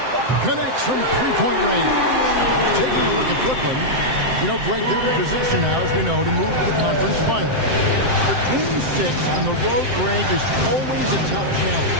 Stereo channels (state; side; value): late; left; 7.7 ms